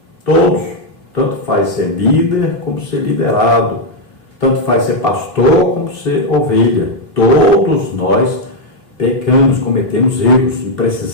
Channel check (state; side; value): late; right; 3.1 ms